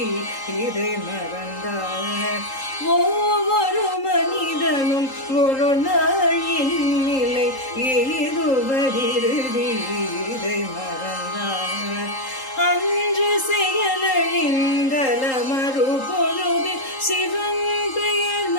இதை மறந்தார். ஒவ்வொரு மனிதனும் ஒரு நாளின் நிலை இதுவரிருதி இதை மறந்தார். அன்று செயலழிந்தல மறுபொழுது சிவன் பெயர்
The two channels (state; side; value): late; right; 3.8 ms